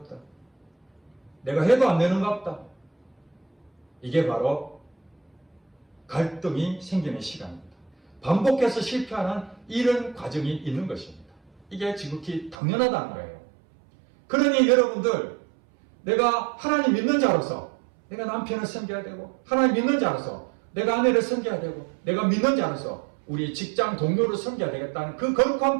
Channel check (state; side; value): drops out; left; at 12.6 s